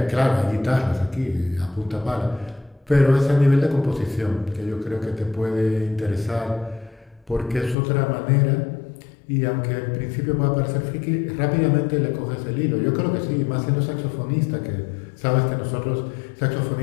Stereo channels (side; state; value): right; drops out; at 7.8 s